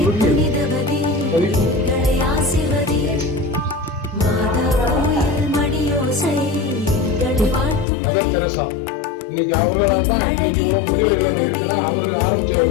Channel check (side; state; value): right; drops out; at 7.9 s